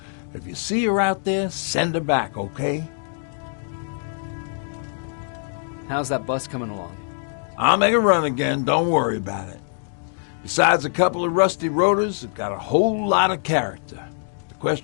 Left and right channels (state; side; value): silent; right; digital silence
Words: If you see her out there, send her back, okay? How's that bus coming along? I'll make a run again, don't worry about it. Besides a couple of rusty rotors, it's got a whole lot of character. The